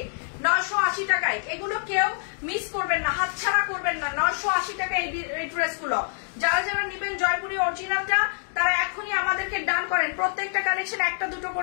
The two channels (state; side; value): silent; right; 61 dB below the other